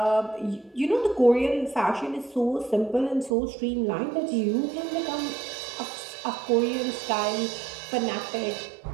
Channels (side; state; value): left; drops out; at 3.4 s